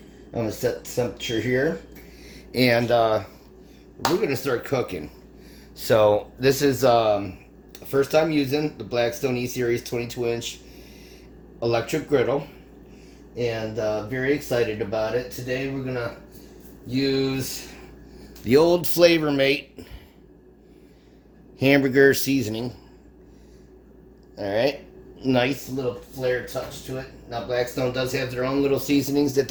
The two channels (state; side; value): identical; both; correlation 1.00